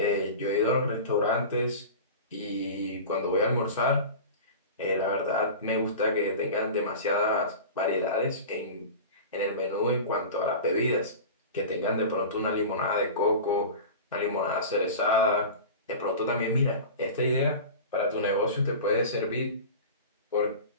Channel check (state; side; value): inverted; both; correlation -0.33